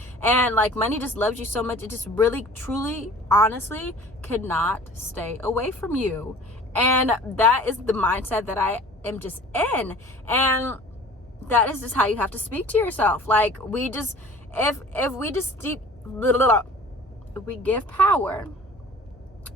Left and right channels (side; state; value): both; normal; correlation 0.46